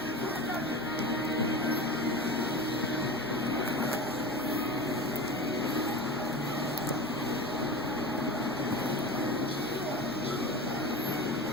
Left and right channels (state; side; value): noise; left; hum, 22 dB below the sound